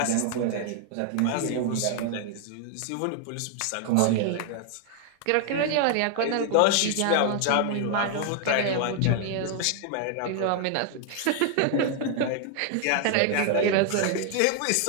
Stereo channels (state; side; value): different; both; correlation 0.00